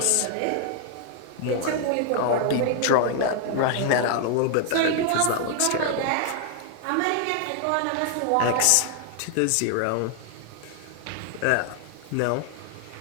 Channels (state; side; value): different; both; correlation 0.00